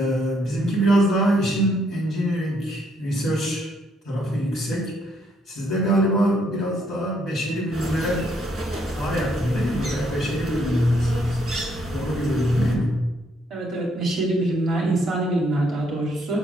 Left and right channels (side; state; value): both; normal; correlation 0.71